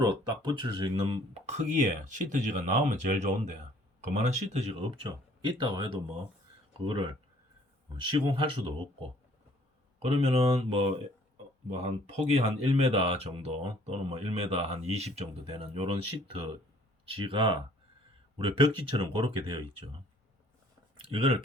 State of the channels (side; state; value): both; normal; correlation 0.58